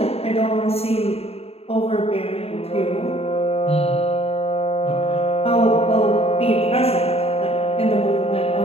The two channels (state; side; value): late; right; 0.29 ms